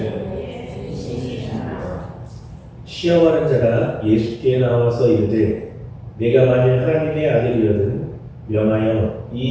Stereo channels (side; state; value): both; identical; correlation 1.00